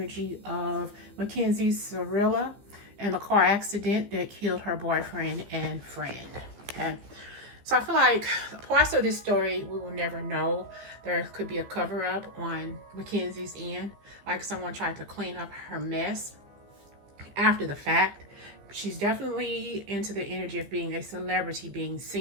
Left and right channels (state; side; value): late; left; 15 ms